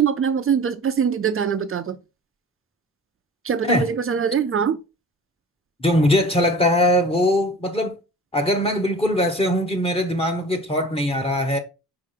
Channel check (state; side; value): normal; both; correlation 0.41